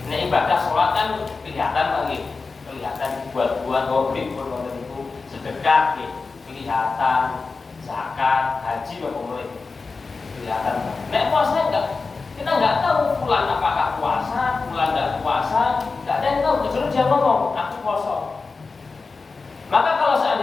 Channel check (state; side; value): quieter; right; 4.3 dB